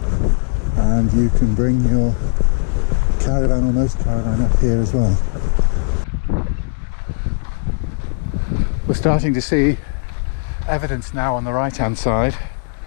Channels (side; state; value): right; silent; 66 dB below the other